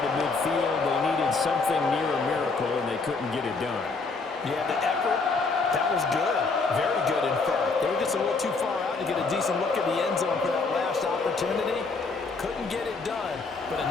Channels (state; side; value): quieter; right; 4.1 dB